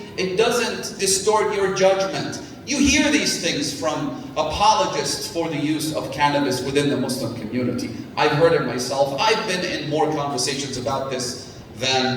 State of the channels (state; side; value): identical; both; correlation 1.00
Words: distort your judgment. You hear these things from apologists for the use of cannabis within the Muslim community. I've heard it myself. I've been in more conversations about this